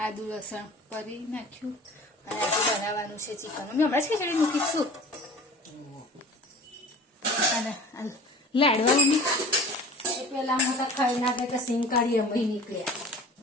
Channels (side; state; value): both; normal; correlation 0.41